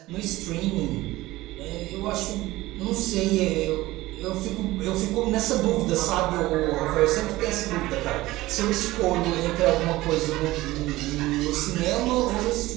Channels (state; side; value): quieter; left; 18.1 dB